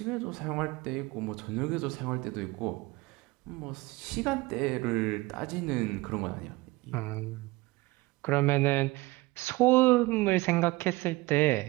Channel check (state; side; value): quieter; left; 21.6 dB